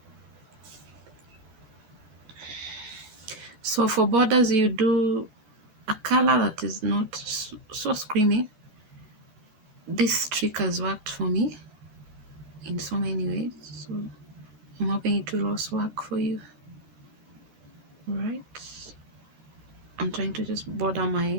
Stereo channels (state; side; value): late; left; 14 ms